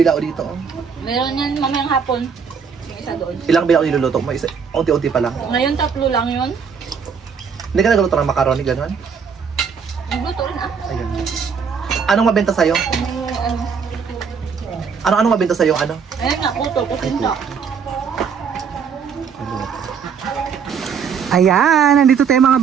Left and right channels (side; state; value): left; quieter; 6.4 dB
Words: dito? Meron yan mamayang hapon. Yung isa doon. Ilang bilao niluluto mo? Unti-unti pa lang. Ngayon 3 lang yun. Hindi ka nagluto ng macaroni, gano'n? Nagluto rin ah. Ayan. Anong mabenta sa'yo? Anong mabenta sa'yo? Ano? Ayan nga, kuto, kutinda. Ayan, nandito tayo mga